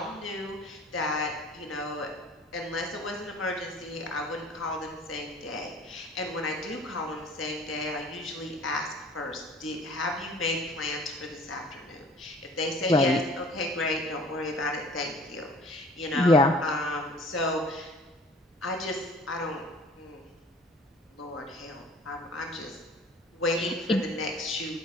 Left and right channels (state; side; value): normal; both; correlation 0.50